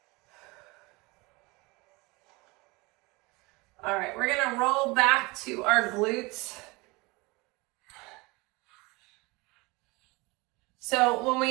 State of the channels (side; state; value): left; quieter; 25.1 dB